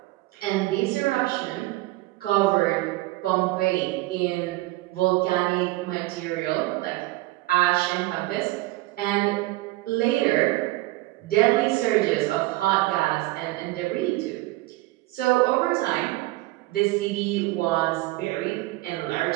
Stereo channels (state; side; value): quieter; left; 19.2 dB